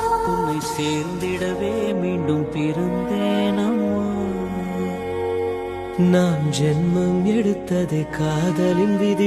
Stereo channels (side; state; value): both; identical; correlation 1.00